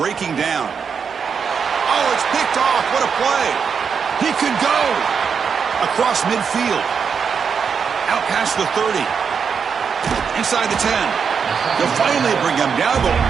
down. Oh, it's picked off. What a play. He could go across midfield. Out past the 30. Inside the 10. They'll finally bring him down, but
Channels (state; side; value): quieter; left; 6.4 dB